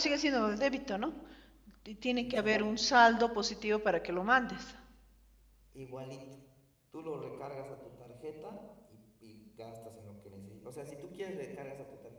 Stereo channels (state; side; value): identical; both; correlation 1.00